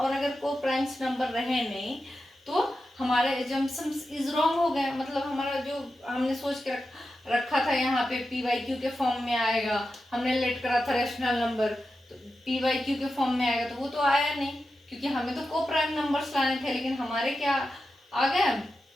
अगर को प्राइम्स नंबर रहे नहीं तो हमारे एजम्पशंस इज रॉन्ग हो गए। मतलब हमारा जो हमने सोच के रखा था यहाँ पे पी बाई क्यू के फॉर्म में आएगा, हमने लेट करा था रैशनल नंबर, तो पी बाई क्यू के फॉर्म में आएगा, तो वो तो आया नहीं, क्योंकि हमें तो को प्राइम नंबर्स लाने थे, लेकिन हमारे क्या आ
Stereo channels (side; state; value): both; normal; correlation 0.91